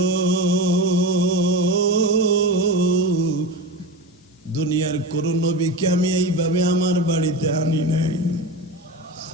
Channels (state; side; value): normal; both; correlation 0.24